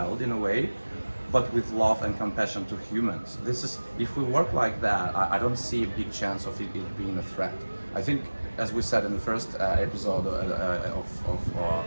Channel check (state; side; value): inverted; both; correlation -1.00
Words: in a way, but with love and compassion to humans. This is, if we work like that, I don't see a big chance of it being a threat. I think, as we said in the first episode